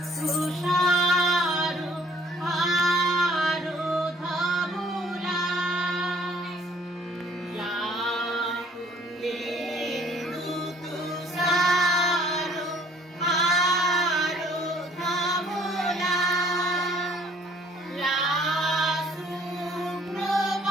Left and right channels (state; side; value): normal; both; correlation 0.58